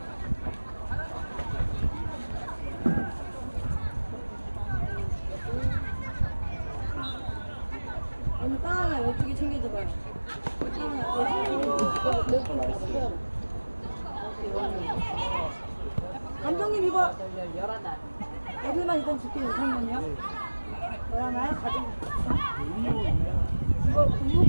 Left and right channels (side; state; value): both; inverted; correlation -1.00